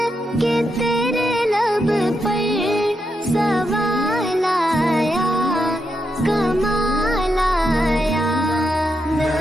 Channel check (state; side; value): normal; both; correlation 0.84